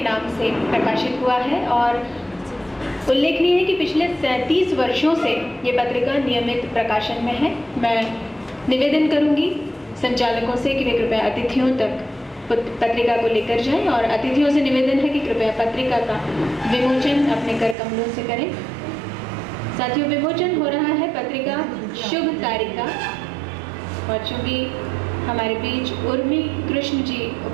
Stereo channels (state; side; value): drops out; left; at 17.8 s